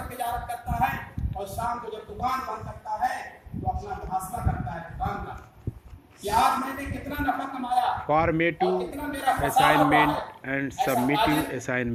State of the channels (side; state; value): both; identical; correlation 1.00